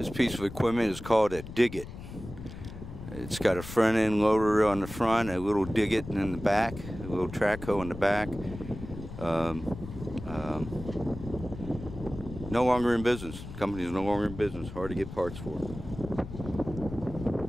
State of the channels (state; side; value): noise; left; rumble, 11 dB below the sound